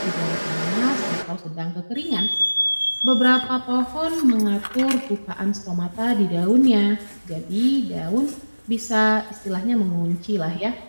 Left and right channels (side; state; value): both; inverted; correlation -1.00